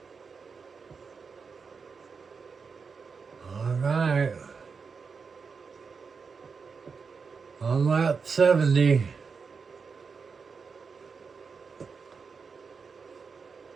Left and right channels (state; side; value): quieter; left; 5.3 dB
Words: All right. On lap 70.